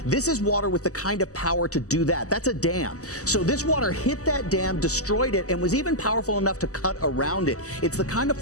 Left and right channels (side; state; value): right; late; 0.66 ms